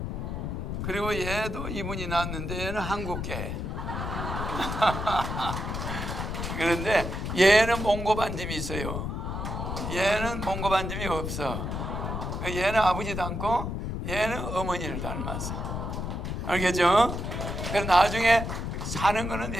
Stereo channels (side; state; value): left; noise; rumble, 4 dB below the sound